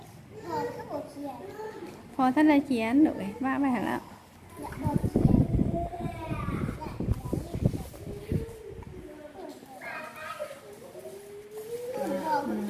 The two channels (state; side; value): identical; both; correlation 1.00